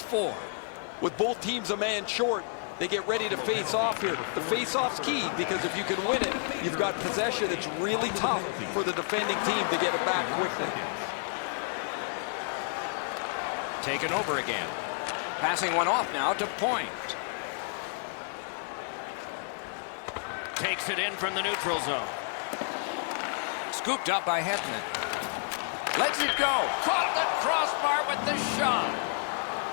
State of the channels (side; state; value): right; silent; 58 dB below the other